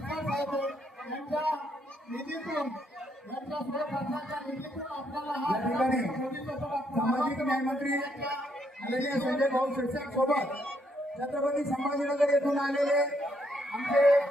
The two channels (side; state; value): both; normal; correlation 0.74